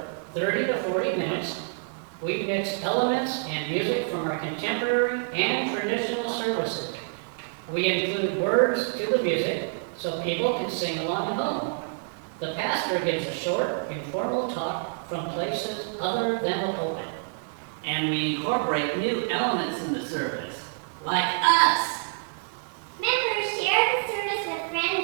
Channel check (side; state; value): left; silent; 60 dB below the other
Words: 30 to 40 minutes. We mix elements and music from our contemporary and traditional services. We include words to the music so people can sing along at home. The pastor gives a short, informal talk from places other than the pulpit. And we incorporate new elements in the service, like us. Members share the service with